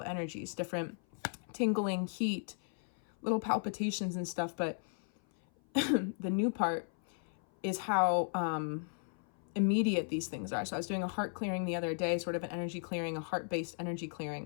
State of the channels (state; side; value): silent; right; 54 dB below the other